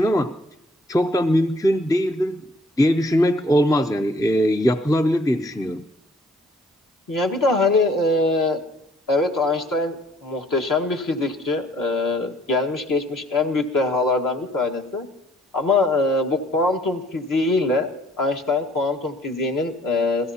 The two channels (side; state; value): both; normal; correlation 0.60